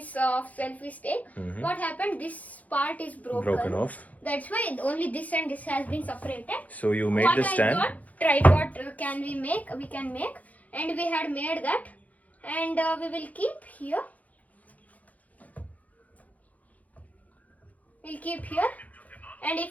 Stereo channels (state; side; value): late; right; 0.074 ms